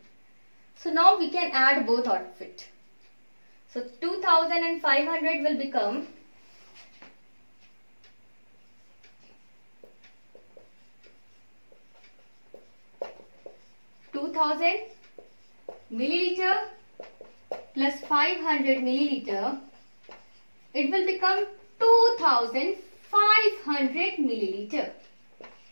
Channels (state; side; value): inverted; both; correlation -1.00